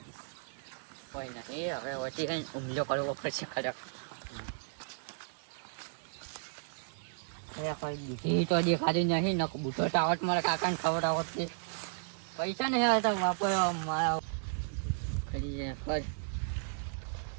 કોઈ નથી હવે વચ્ચે કઈ હુમલો કરવો પડશે ખરેખર. દૂધી તો દેખાતી નહીં ન બુઢો ટાવટ મારા કાકાને ખવડાવત છે. પૈસા નહીં આવતા વાપરવા મારા કરી જાય ખર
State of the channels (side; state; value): left; silent; digital silence